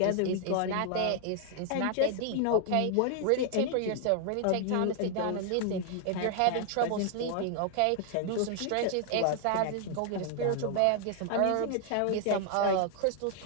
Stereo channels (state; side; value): different; both; correlation 0.00